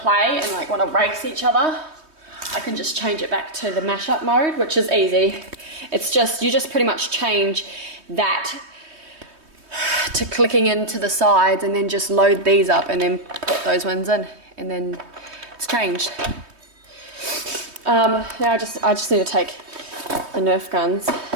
play and like want to race each other, I can just change it back to the mashup mode, which is easy. It's just, you just pretty much change that to clicking into the sides and then just load these up and then put those ones in, and then it's changed. Now I just need to take the Nerf guns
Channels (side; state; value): left; late; 3.2 ms